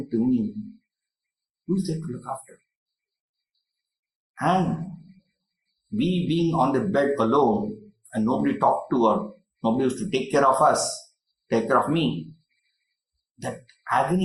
to me, who is there to look after? And we being on the bed alone and nobody talked to or nobody was to take care of us, take care of me, that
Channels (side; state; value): both; identical; correlation 1.00